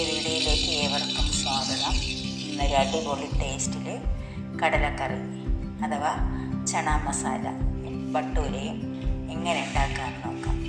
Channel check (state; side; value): identical; both; correlation 1.00